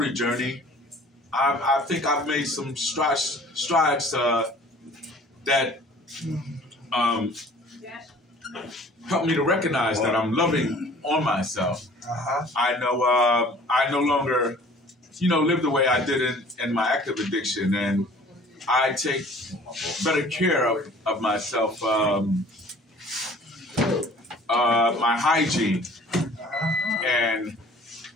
journey, I think I've made some strides that help me to recognize that I'm loving on myself. I know I no longer, live the way I did in my active addiction, and I take better care of myself, my hygiene, and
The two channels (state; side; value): normal; both; correlation 0.50